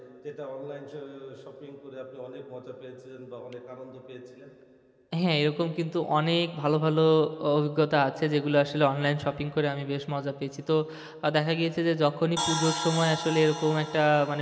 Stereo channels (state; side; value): identical; both; correlation 1.00